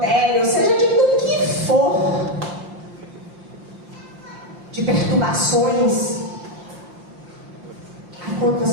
seja de do que for, de perturbações. Aí quando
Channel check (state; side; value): late; left; 5.7 ms